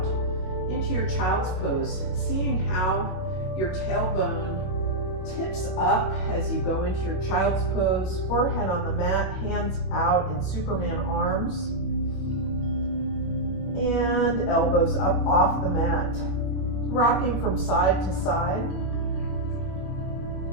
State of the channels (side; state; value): right; late; 21 ms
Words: into your child's pose, seeing how your tailbone tips up as you go into your child's pose, forehead on the mat, hands out in Superman arms, and elbows up off the mat, rocking from side to side.